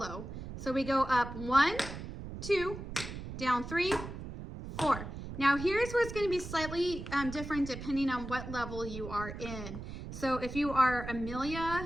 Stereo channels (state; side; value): noise; right; rumble, 9 dB below the sound